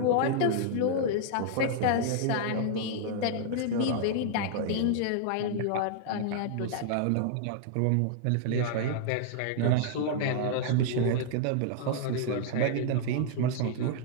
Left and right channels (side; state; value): both; different; correlation -0.01